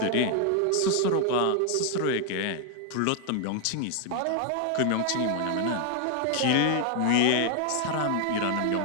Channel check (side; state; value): both; different; correlation 0.00